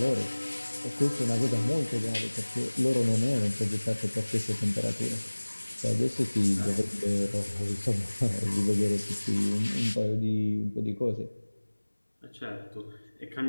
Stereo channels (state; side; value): inverted; both; correlation -1.00